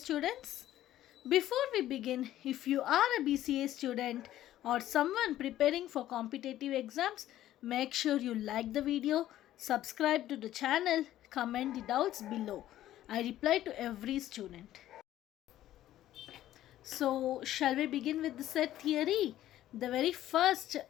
Before we begin, if you are a BCA student or someone preparing for competitive exams, make sure you like the video, subscribe to the channel, comment the doubts below. I reply to every student. So, shall we begin with the set theory? The very first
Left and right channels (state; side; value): quieter; right; 13.3 dB